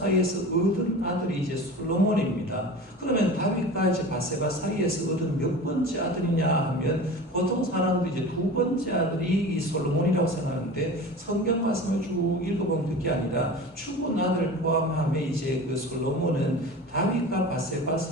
얻은 아들이 이제 솔로몬입니다. 그러면 다윗과 이제 바세바 사이에서 얻은 몇 번째 아들이냐 하면 보통 사람들이 이제 두 번째 아들이 이 솔로몬이라고 생각하는데, 성경 말씀을 쭉 읽어보면 그게 아니라 죽은 아들 포함하면 이제 그 솔로몬은 다윗과 바세바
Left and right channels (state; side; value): normal; both; correlation 0.34